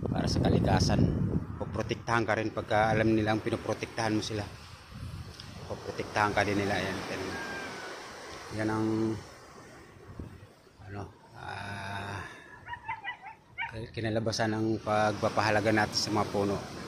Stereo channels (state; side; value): identical; both; correlation 1.00